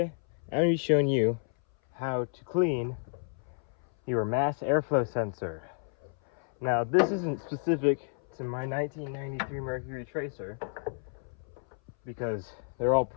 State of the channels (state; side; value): silent; right; 57 dB below the other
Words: I'm going to be showing you how to clean your mass airflow sensor. Now, this isn't specific to my 1993 Mercury tracer, because they're all